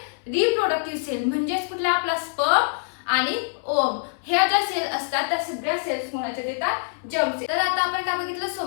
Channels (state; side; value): silent; right; 62 dB below the other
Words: रिप्रोडक्टिव्ह सेल, म्हणजेच कुठला आपला स्पर्म आणि ओम, ह्या ज्या सेल असतात त्या सगळ्या सेल्स कोणाच्यात येतात, जर्म सेल. तर आता आपण काय बघितलं,